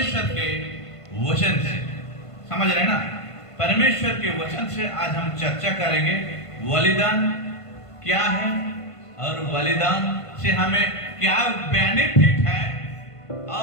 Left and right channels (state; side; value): late; right; 1.5 ms